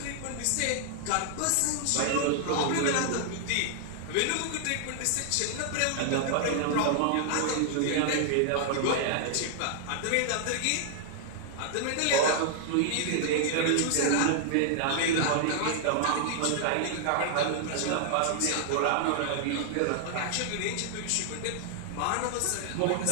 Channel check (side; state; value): both; different; correlation 0.00